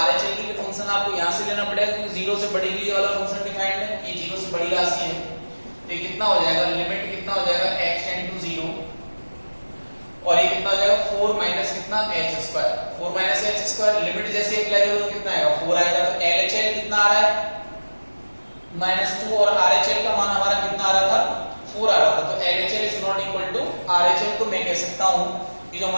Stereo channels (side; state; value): both; inverted; correlation -1.00